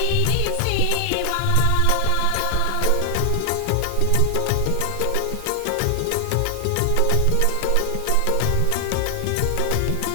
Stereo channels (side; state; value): both; different; correlation 0.00